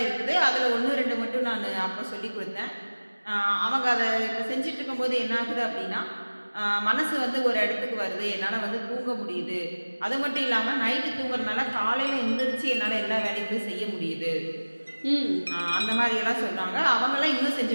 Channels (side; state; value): both; inverted; correlation -1.00